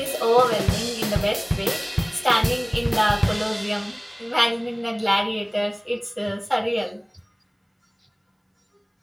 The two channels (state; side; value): identical; both; correlation 1.00